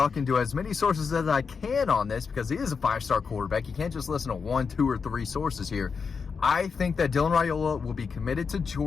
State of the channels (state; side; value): quieter; right; 5.5 dB